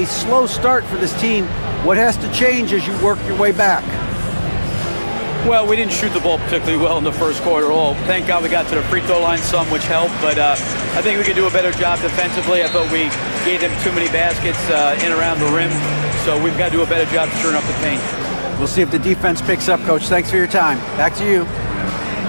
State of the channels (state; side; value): inverted; both; correlation -1.00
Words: slow start for this team. What has to change as you work your way back? Well, we didn't shoot the ball particularly well in the first quarter at all. Thank God we got to the free throw line some, which helped. But I think we could do a better job defensively. I thought we gave them too many baskets in around the rim. So we've got to do a better job turning up the paint. We'll see if the defense picks up, Coach. Thanks for your time. Back to you.